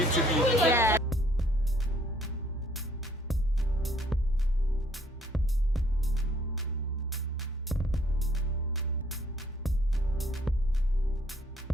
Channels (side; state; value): both; normal; correlation 0.62